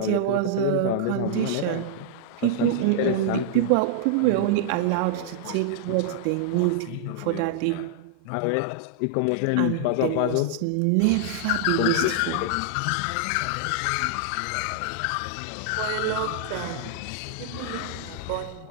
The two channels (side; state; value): both; different; correlation -0.01